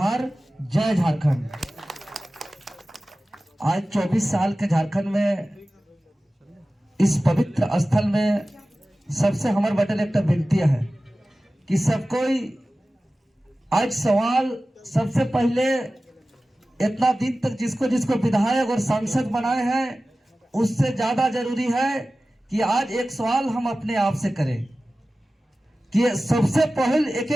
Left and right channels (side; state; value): both; normal; correlation 0.96